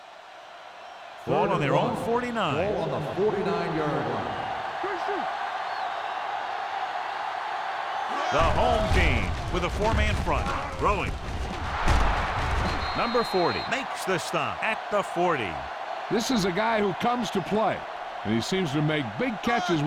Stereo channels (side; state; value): both; identical; correlation 1.00